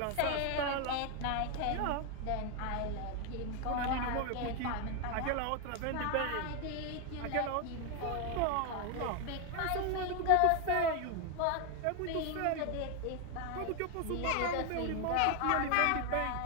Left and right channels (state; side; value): different; both; correlation 0.01